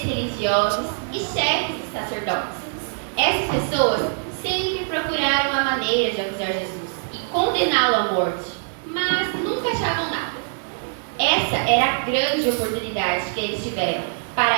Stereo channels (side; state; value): left; silent; 63 dB below the other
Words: religiosos e chefes de sacerdotes. Essas pessoas sempre procuraram uma maneira de acusar Jesus e condená-lo à morte, mas nunca achavam nada. Essa era a grande oportunidade que eles tiveram